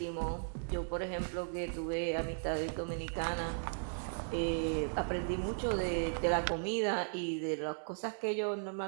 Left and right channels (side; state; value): left; silent; digital silence